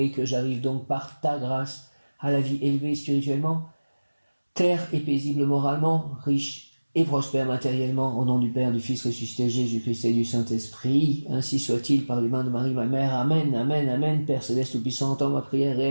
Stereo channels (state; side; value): inverted; both; correlation -1.00